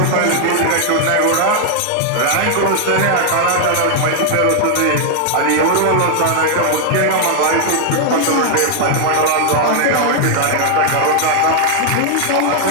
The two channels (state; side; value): different; both; correlation 0.00